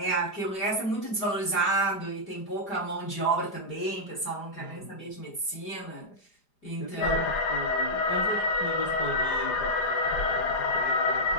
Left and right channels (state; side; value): late; right; 4.9 ms